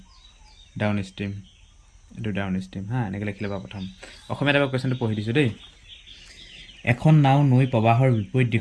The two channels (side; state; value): both; identical; correlation 1.00